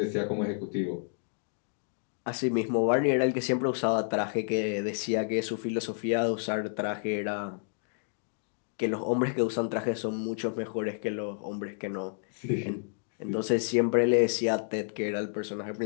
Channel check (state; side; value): silent; right; digital silence